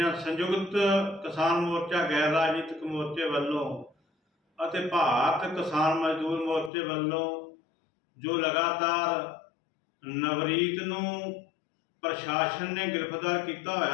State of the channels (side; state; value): right; drops out; at 6.7 s